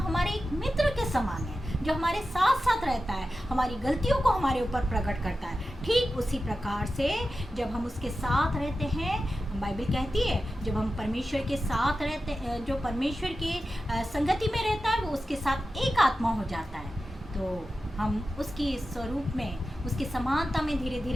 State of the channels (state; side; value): normal; both; correlation 0.93